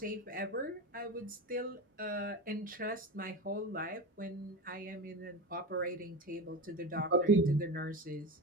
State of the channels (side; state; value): both; normal; correlation 0.25